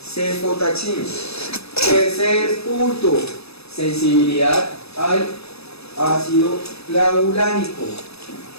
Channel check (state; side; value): late; right; 0.79 ms